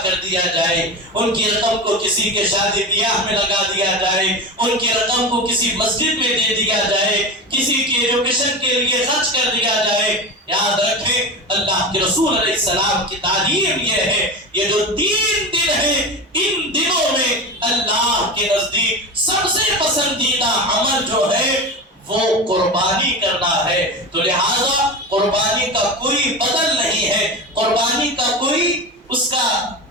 کر دیا جائے، ان کی رقم کو کسی کے شادی بیاہ میں لگا دیا جائے، ان کی رقم کو کسی مسجد میں دے دیا جائے، کسی کی ایجوکیشن کے لیے خرچ کر دیا جائے۔ یاد رکھیں اللہ کے رسول علیہ السلام کی تعلیم یہ ہے، یہ جو 3 دن ہیں ان دنوں میں اللہ کے نزدیک سب سے پسندیدہ عمل جو ہے وہ قربانی کرنا ہے۔ تو لہذا قربانی کا کوئی بدل نہیں ہے، قربانی کا کوئی اس کا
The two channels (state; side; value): normal; both; correlation 0.25